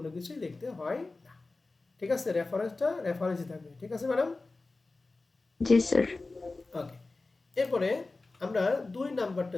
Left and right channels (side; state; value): right; quieter; 3.5 dB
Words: কিছুই লিখতে হয় না, ঠিক আছে? রেফারেন্সে থাকবে, ঠিক আছে ম্যাডাম? জি স্যার। ওকে, এরপরে আমরা 2 নাম্বারটা